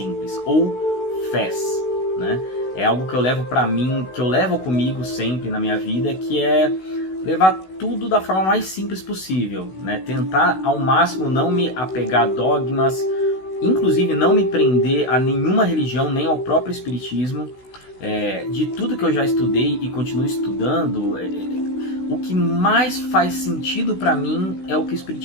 ou FES, né? É algo que eu levo pra mim, que eu levo comigo sempre na minha vida, que é levar tudo da forma mais simples possível, né? Tentar ao máximo não me apegar a dogmas, inclusive não me prender a nenhuma religião, nem ao próprio espiritismo. De tudo que eu já estudei e continuo estudando, o que mais faz sentido para mim é o que o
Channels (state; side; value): late; right; 16 ms